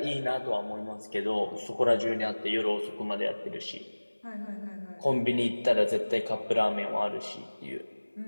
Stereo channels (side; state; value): both; inverted; correlation -1.00